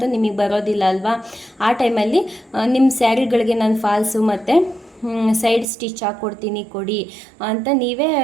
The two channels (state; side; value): drops out; left; at 5.7 s